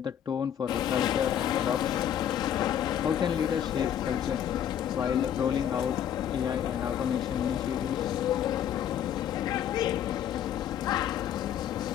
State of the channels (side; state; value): right; quieter; 9.9 dB